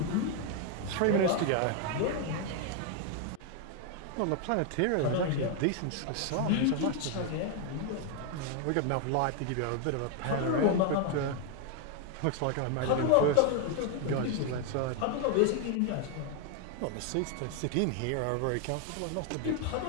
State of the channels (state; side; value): different; both; correlation 0.01